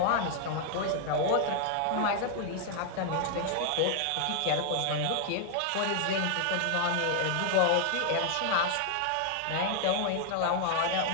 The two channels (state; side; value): different; both; correlation 0.00